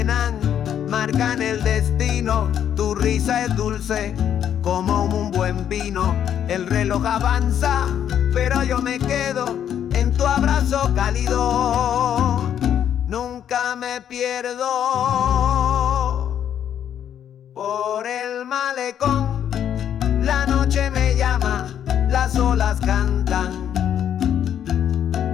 marcan el destino. Tu risa es dulce como un buen vino. El reloj avanza, pero yo me quedo en tu abrazo cálido. Nunca me pierdo por el malecón. La noche me llama, las olas cantan,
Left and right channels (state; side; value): quieter; right; 9.6 dB